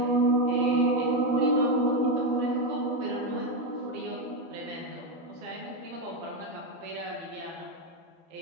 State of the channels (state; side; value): late; left; 12 ms